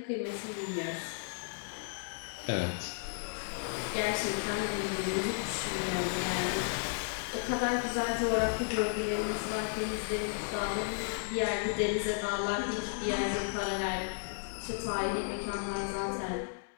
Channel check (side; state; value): right; silent; digital silence